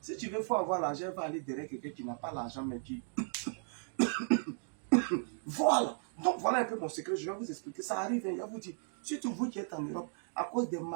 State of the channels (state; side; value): silent; left; digital silence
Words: tu veux, faut avoir l'argent, il va aller derrière quelqu'un qui n'a pas l'argent, mais qui voilà. Donc voilà un peu mon secret. Je vais vous expliquer. Ça arrive, hein, je vais vous dire. Surtout vous qui êtes en Europe, à cause des